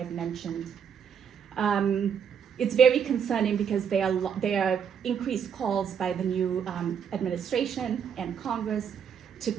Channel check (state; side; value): quieter; left; 7.6 dB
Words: mentioned. It's very concerning because there are increased calls by the new administration and Congress to